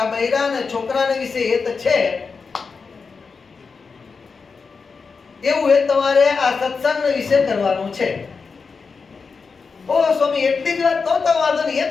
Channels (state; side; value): quieter; right; 5.0 dB